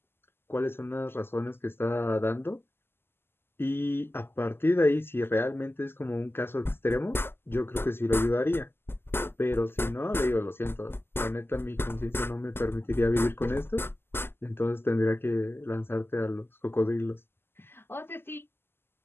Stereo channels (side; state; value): right; late; 0.11 ms